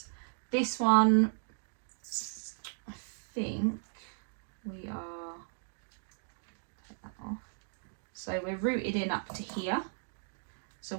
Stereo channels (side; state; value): left; silent; 54 dB below the other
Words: This one, I think we are, take that off. So we're rooted in up to here. So